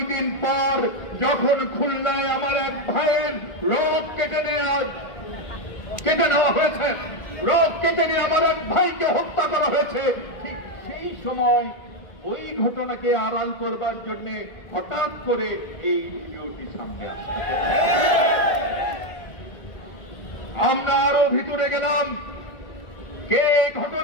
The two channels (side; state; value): right; late; 1.4 ms